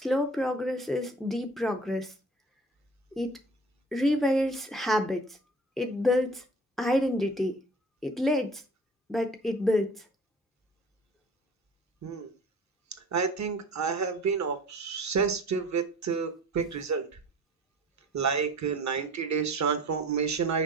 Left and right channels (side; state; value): both; normal; correlation 0.45